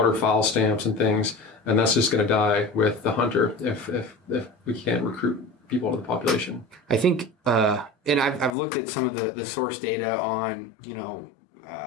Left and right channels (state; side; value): drops out; right; at 8.6 s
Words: stamps and things. And that's just going to die with the hunter if we can't recruit people to the population. I think, and I've looked at some of the source data on,